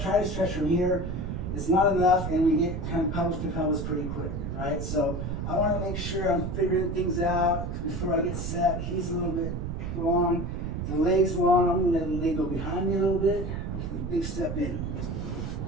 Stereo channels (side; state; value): right; noise; rumble, 4 dB below the sound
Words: try to stretch from here, it's not enough, and we get kind of pelvis to pelvis pretty quick, right? So I want to make sure I'm figuring things out before I get set. He's a little bit long, the leg's long. I'm going to let the leg go behind me a little bit. Big step in.